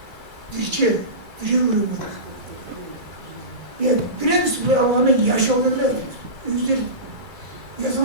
Dirçe, biri vuruyor. Ya biraz bu alanı yaşadılar. Yüzler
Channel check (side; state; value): left; late; 2.3 ms